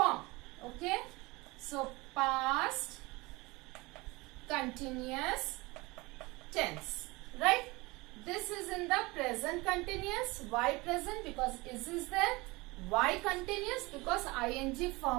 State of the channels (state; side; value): quieter; left; 23.4 dB